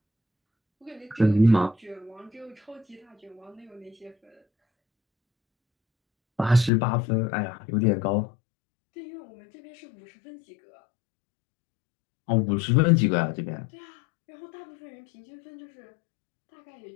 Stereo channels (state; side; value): drops out; right; at 6.7 s